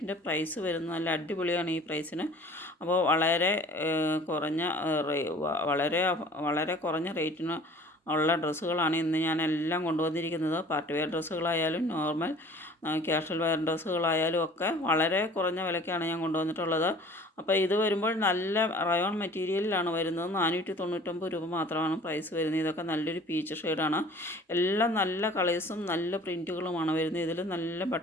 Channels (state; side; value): normal; both; correlation 0.48